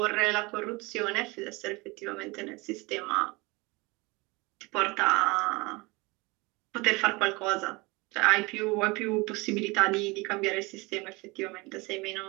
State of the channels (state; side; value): quieter; left; 24.9 dB